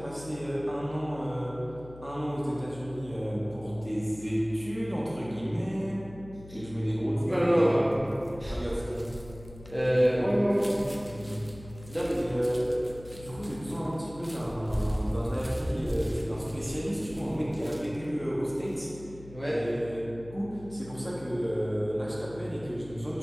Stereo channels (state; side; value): noise; left; hum, 17 dB below the sound